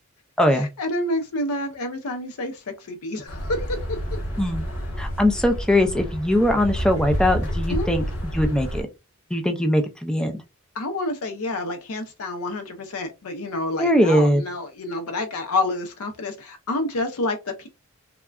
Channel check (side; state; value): both; normal; correlation 0.65